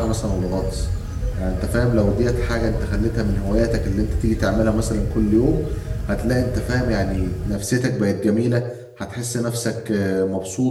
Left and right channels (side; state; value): both; identical; correlation 1.00